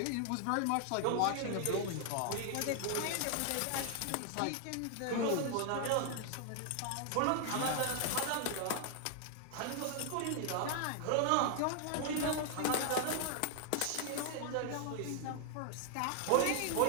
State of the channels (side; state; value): both; different; correlation 0.00